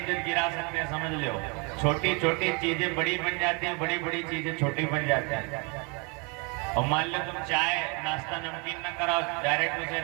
गिरा सकते हैं, समझ लो। छोटी छोटी चीजें बड़ी बन जाती हैं, बड़ी बड़ी चीजें छोटी बन जाती हैं। और मान लो तुम चाय नाश्ता नमकीन न कराओ, डायरेक्ट उसे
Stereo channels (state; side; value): quieter; left; 32.4 dB